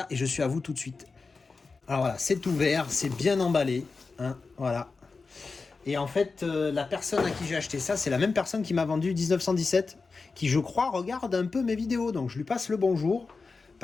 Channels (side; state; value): right; quieter; 4.3 dB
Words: et je suis à vous tout de suite. Alors voilà, c'est ouvert, c'est bien emballé. Hein, voilà. Et en fait, la personne à qui j'ai acheté ça, c'est la même personne qui m'a vendu 1917, qui je crois regarde un peu mes vidéos. Donc je lui passe le bonjour.